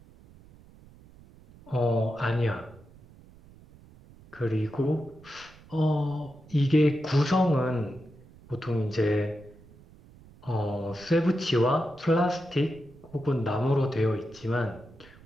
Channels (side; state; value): right; noise; rumble, 23 dB below the sound